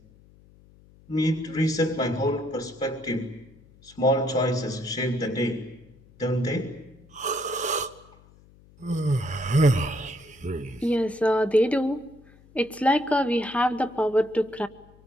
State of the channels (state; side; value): noise; left; hum, 26 dB below the sound